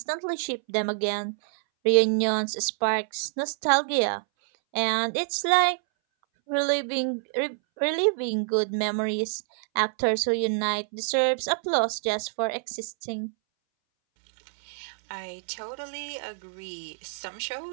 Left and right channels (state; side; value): silent; left; 60 dB below the other